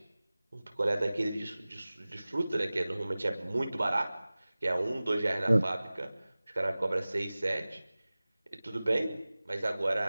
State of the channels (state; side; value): inverted; both; correlation -0.98